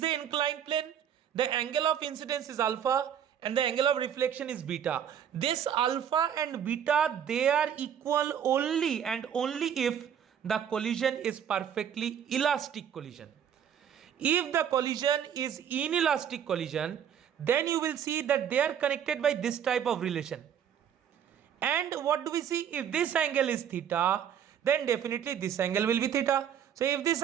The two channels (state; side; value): quieter; left; 8.9 dB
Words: inclined plane, the angle of incidence is alpha and the angle of reflection is beta. This alpha and beta, they are equal only and only if the collision is perfectly elastic collision. If the collision is inelastic collision, then you will see that they are connected by this type of relation. And what do we see? If this angle is theta, then definitely this angle will be theta. So if this